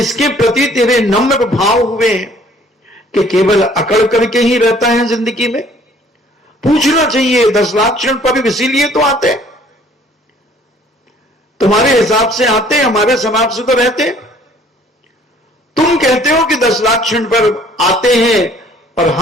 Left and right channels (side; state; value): both; normal; correlation 0.57